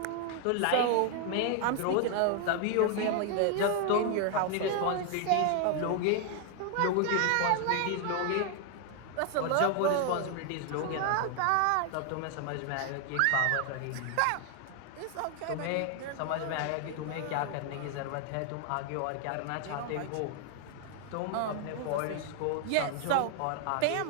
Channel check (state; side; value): different; both; correlation 0.00